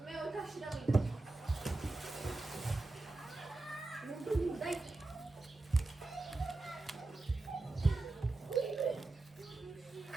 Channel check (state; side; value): quieter; left; 3.0 dB